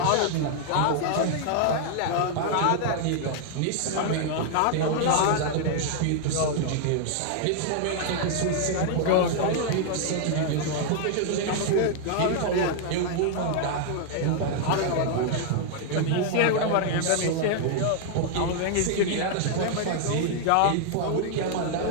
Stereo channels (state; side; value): different; both; correlation 0.00